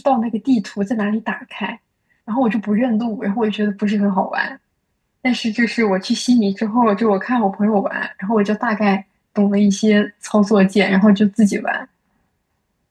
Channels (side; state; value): both; identical; correlation 1.00